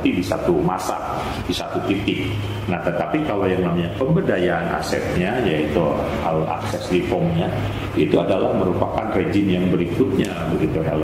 di satu masa, di satu titik. Nah, tetapi kalau yang namanya pemberdayaan asetnya, yaitu akses reformnya, itu adalah merupakan rezim yang berikutnya, begitu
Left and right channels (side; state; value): both; identical; correlation 1.00